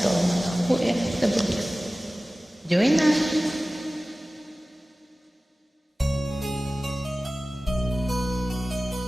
mga OFW. Join na!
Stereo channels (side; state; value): both; normal; correlation 0.97